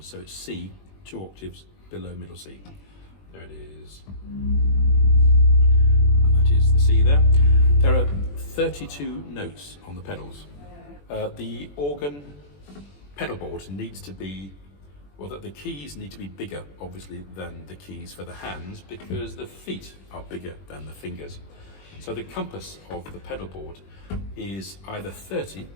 so it's C, 2 octaves below middle C. There it is. And that is the C there. There are 32 notes on the pedals. The organ pedal board needs to be, well, the keys need to be bigger, obviously, than the keys for the hands, because the feet are bigger than the fingers. So the compass of the pedal board is either 30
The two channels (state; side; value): late; right; 21 ms